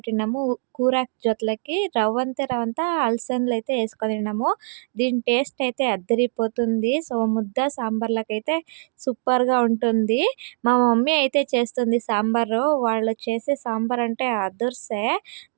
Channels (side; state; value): left; silent; digital silence